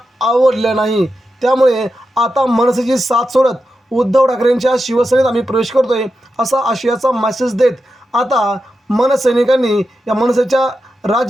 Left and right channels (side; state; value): both; normal; correlation 0.89